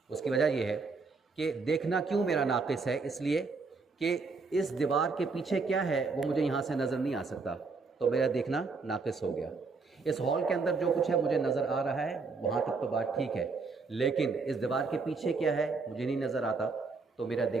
اس کی وجہ یہ ہے کہ دیکھنا کیوں میرا ناقص ہے؟ اس لیے کہ اس دیوار کے پیچھے کیا ہے وہ مجھے یہاں سے نظر نہیں آ سکتا، تو میرا دیکھنا ناقص ہو گیا۔ اس ہال کے اندر جو کچھ ہے مجھے نظر آ رہا ہے، وہاں تک تو بات ٹھیک ہے، لیکن اس دیوار کے پیچھے کیا ہے مجھے نہیں نظر آتا، تو میرا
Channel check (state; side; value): quieter; left; 4.3 dB